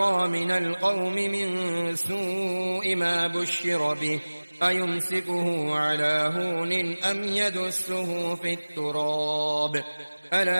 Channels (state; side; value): inverted; both; correlation -1.00